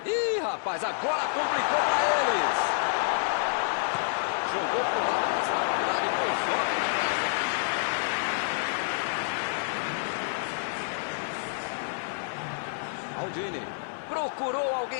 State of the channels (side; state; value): right; silent; digital silence